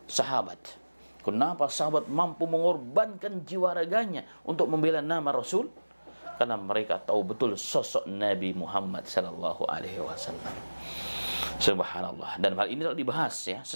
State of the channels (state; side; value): inverted; both; correlation -1.00